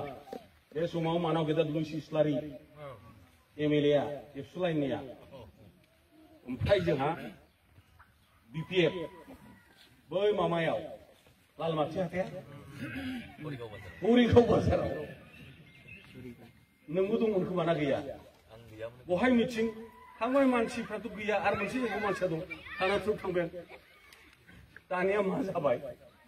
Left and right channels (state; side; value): identical; both; correlation 1.00